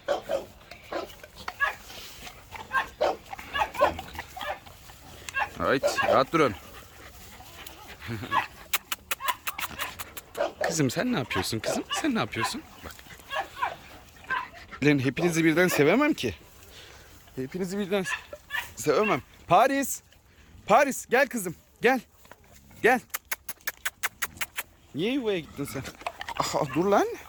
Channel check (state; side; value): identical; both; correlation 1.00